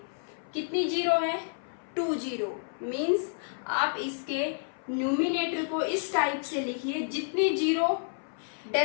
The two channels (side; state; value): right; silent; 58 dB below the other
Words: कितनी जीरो है, 2 जीरो. मीन्स आप इसके न्यूमिनेटर को इस टाइप से लिखिए, जितनी जीरो